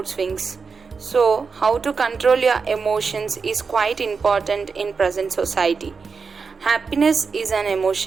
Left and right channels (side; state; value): left; quieter; 5.1 dB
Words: swings. So, how to control your emotions is quite important in present society. Happiness is an